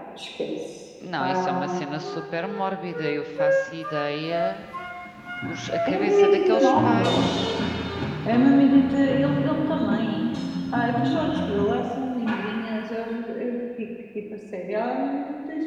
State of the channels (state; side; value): identical; both; correlation 1.00